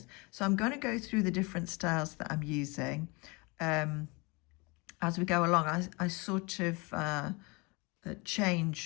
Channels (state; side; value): quieter; right; 27.8 dB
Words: So I'm going to go through the different styles that I'm using as we go along. I sort of